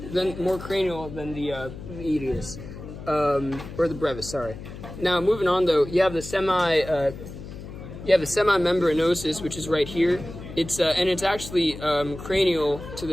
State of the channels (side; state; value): left; noise; hum, 12 dB below the sound